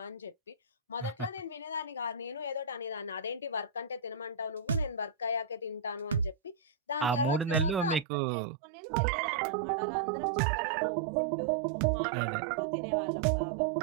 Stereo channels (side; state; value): left; drops out; at 8.1 s